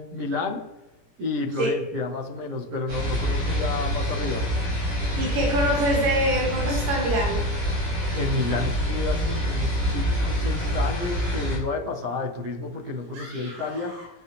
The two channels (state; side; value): late; left; 17 ms